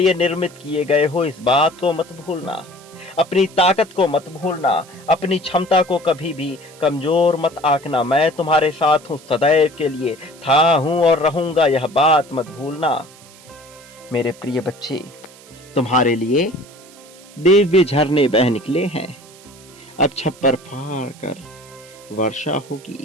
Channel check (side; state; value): right; noise; hiss, 23 dB below the sound